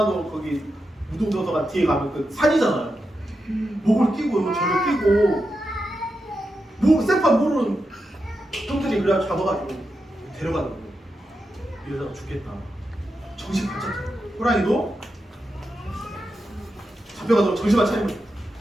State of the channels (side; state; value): both; normal; correlation 0.88